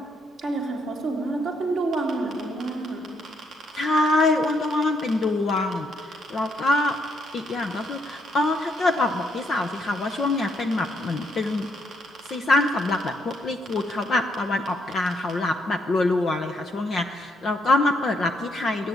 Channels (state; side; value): normal; both; correlation 0.74